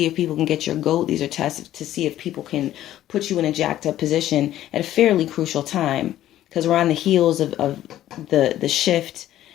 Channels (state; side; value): quieter; right; 13.1 dB